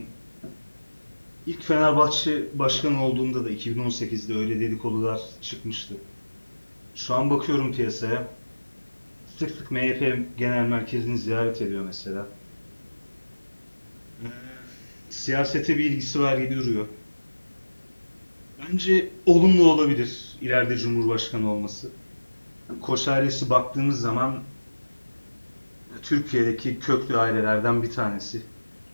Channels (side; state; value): both; inverted; correlation -1.00